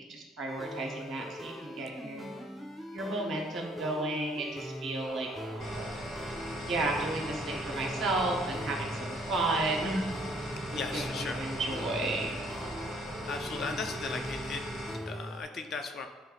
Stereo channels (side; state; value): both; normal; correlation 0.63